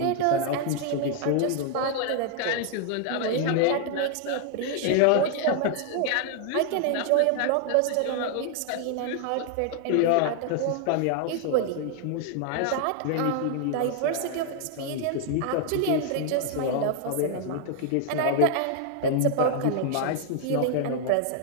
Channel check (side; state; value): both; different; correlation 0.00